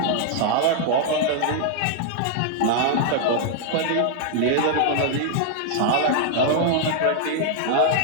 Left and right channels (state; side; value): different; both; correlation 0.00